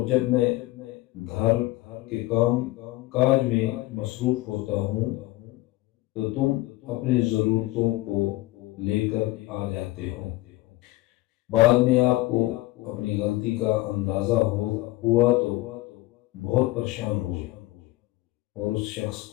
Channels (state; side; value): quieter; right; 18.8 dB